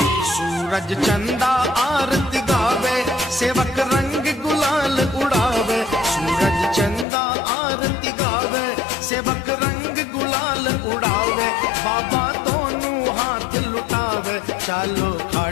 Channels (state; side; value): drops out; right; at 7.1 s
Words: सूरज चंदा आरती गावे, सेवक रंग गुलाल उड़ावे। सूरज चंदा आरती गावे, सेवक रंग गुलाल उड़ावे। बाबा दोनों चालो